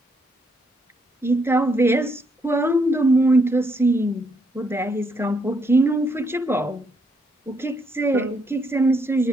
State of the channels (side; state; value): both; normal; correlation 0.75